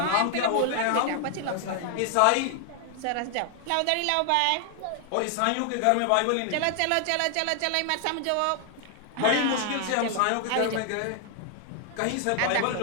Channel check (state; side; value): different; both; correlation 0.00